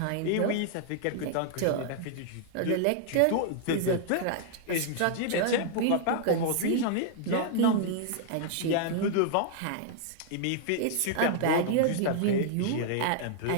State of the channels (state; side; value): different; both; correlation -0.01